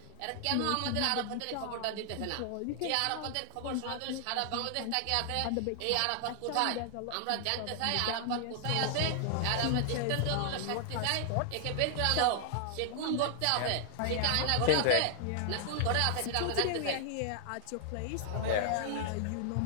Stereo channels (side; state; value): both; different; correlation 0.00